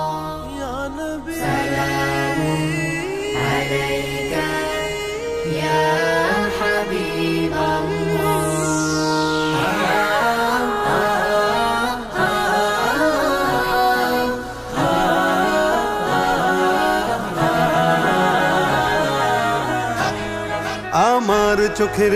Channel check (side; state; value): both; identical; correlation 1.00